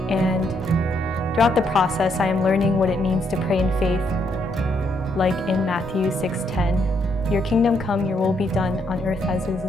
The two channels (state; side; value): normal; both; correlation 0.74